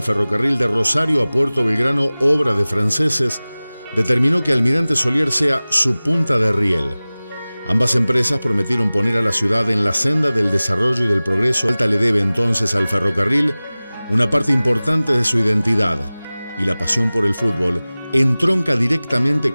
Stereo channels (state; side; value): inverted; both; correlation -0.98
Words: ferrocarril de Rosario a Puerto Belgrano, obra de franceses, determinó que Almirante Solier sea su punta de riel. Ambas empresas prometieron poner a la ciudad en la senda del desarrollo y del progreso. Alta le debe entonces al ferrocarril una parte importante de su identidad, y la pasión por el fútbol entronca directamente